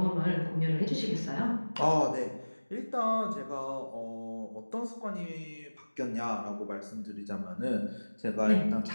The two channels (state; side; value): inverted; both; correlation -1.00